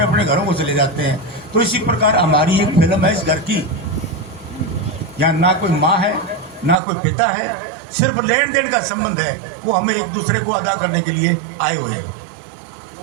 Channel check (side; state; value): left; drops out; at 6.8 s